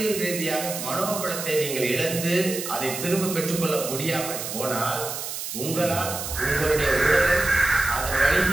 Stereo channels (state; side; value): noise; right; hiss, 6 dB below the sound